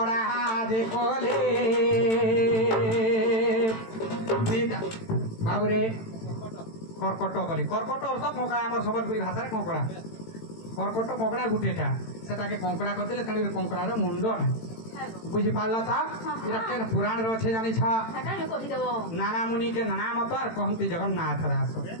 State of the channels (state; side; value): late; right; 18 ms